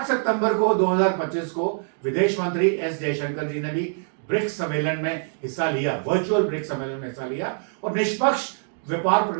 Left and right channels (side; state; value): left; silent; digital silence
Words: सितंबर को 2025 को विदेश मंत्री एस जयशंकर जी ने भी ब्रिक्स सम्मेलन में हिस्सा लिया, वर्चुअल ब्रिक्स सम्मेलन में हिस्सा लिया और निष्पक्ष व्यापार